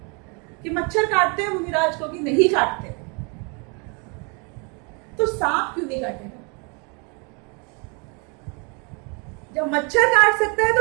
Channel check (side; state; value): left; quieter; 33.7 dB